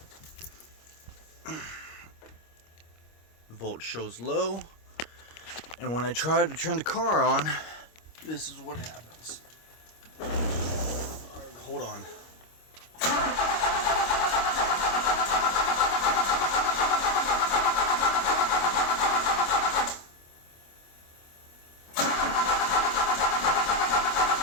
Volt shows low, and when I try to turn the car on, this is what happens. Hold on.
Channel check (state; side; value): late; right; 25 ms